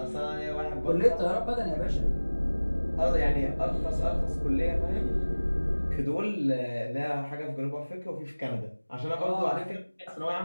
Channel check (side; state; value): both; inverted; correlation -1.00